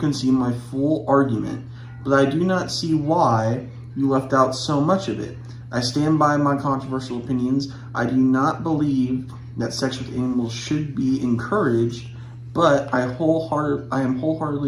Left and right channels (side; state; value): both; identical; correlation 1.00